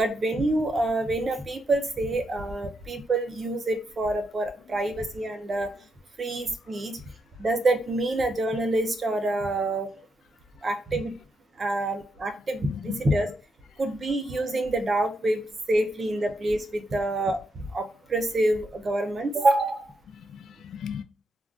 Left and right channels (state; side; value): normal; both; correlation 0.81